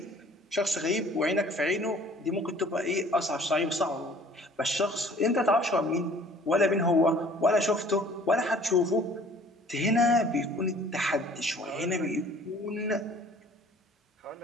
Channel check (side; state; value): both; normal; correlation 0.52